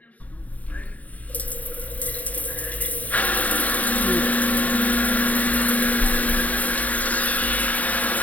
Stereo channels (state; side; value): late; right; 0.071 ms